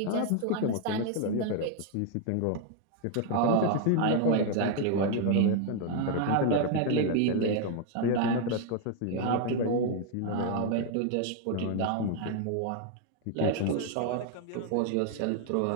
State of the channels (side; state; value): both; different; correlation 0.00